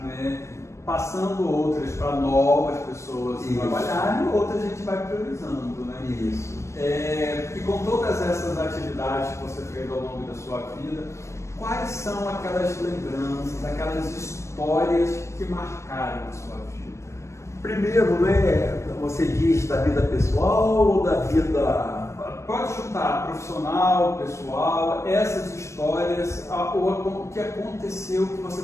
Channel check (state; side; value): late; right; 0.14 ms